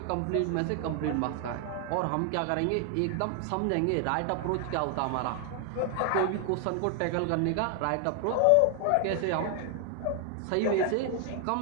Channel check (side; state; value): both; different; correlation 0.00